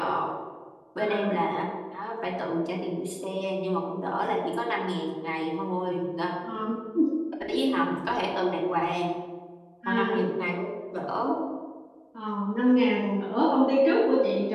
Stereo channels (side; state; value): both; identical; correlation 1.00